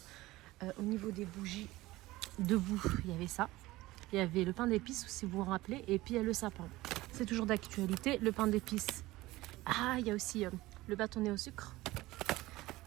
Au niveau des bougies, debout, il y avait ça. Il y avait le pain d'épices, si vous vous rappelez, et puis il y a le sapin. C'est toujours d'actualité, le pain d'épices. Ah, il y a aussi le bâtonnet au sucre.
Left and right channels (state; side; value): quieter; left; 18.5 dB